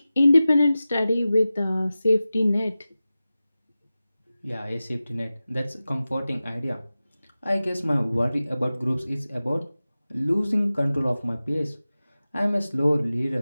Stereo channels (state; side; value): inverted; both; correlation -0.95